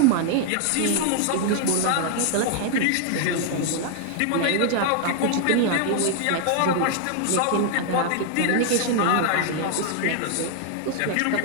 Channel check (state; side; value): different; both; correlation 0.00